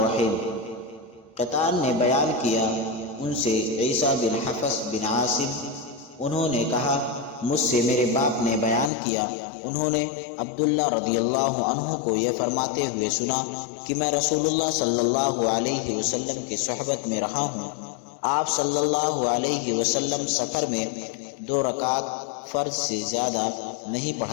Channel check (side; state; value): right; drops out; at 8.9 s